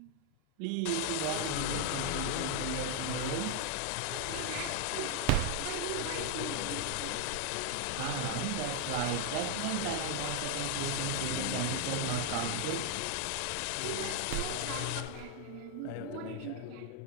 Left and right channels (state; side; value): different; both; correlation 0.00